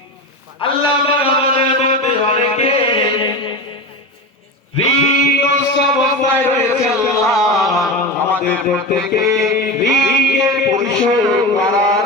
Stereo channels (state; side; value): normal; both; correlation 0.24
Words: আল্লাহ পাক। আমাদের মধ্যে অনেকে ঋণগ্রস্ত অবস্থায় রয়েছে আল্লাহ, আমাদের প্রত্যেকে ঋণের পরিশোধ করার